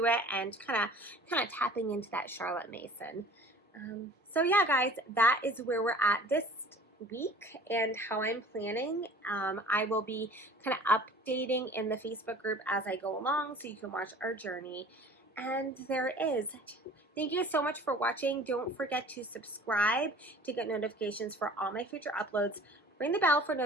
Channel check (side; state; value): both; normal; correlation 0.46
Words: it, and kind of tapping into that Charlotte Mason So yeah, guys, that is where we're at this week and how I'm planning. I will be kind of updating in the Facebook group as I go along so you can watch our journey. And there it is. Thank you so much for watching. Don't forget to subscribe to get notifications for all my future uploads. Ring the bell for